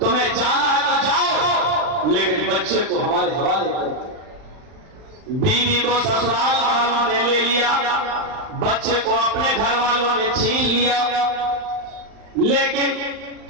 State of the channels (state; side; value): late; left; 39 ms